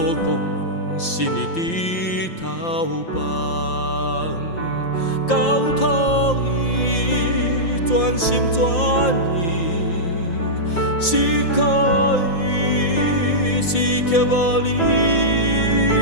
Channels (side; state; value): right; late; 5.8 ms